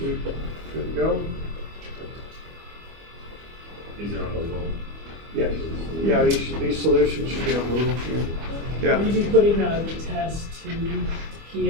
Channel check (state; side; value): late; left; 25 ms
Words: good to go? These are on the wall. Yes. Yeah, these solutions should be on Google. Yeah. Will you be putting the test to